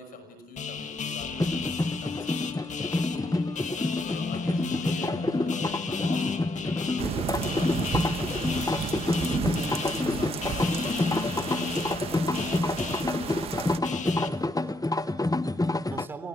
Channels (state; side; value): normal; both; correlation 0.75